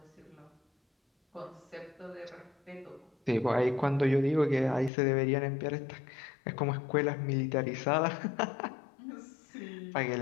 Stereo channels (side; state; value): right; drops out; at 4.9 s